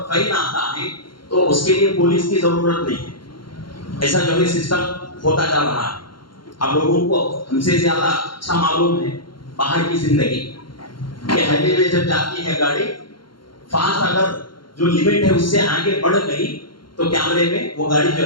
فائن آتا ہے تو اس کے لیے پولیس کی ضرورت نہیں ہے. ایسا جو ہے سسٹم ہوتا جا رہا ہے. اب لوگوں کو ہم سے زیادہ اچھا معلوم ہے باہر کی زندگی کہ ہائی وے جب جاتی ہے گاڑی, فاسٹ اگر جو لمٹ ہے اس سے آگے بڑھ گئی تو کیمرے میں وہ گاڑی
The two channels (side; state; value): right; late; 0.72 ms